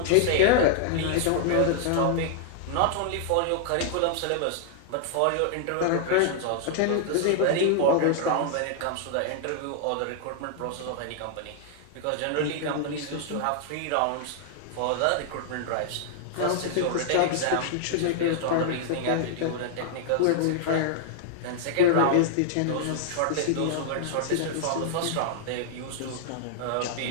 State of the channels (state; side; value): different; both; correlation -0.01